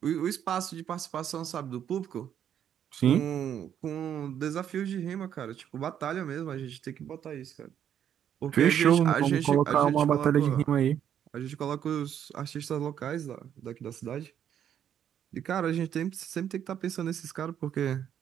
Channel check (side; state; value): left; quieter; 9.5 dB